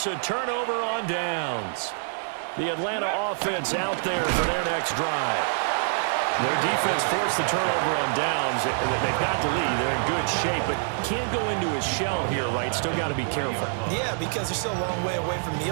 a turnover on downs. The Atlanta offense out there for their next drive. Their defense forced the turnover on downs. They've got the lead. They're in good shape, but can't go into a shell here, right? Still got to be careful. Yeah, because they're still a long way away from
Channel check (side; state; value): left; silent; 61 dB below the other